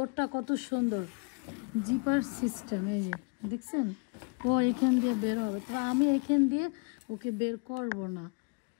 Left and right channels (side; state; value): right; quieter; 32.7 dB